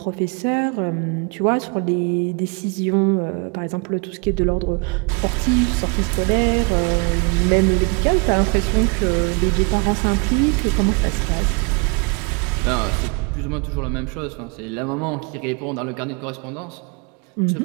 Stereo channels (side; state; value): left; quieter; 32.6 dB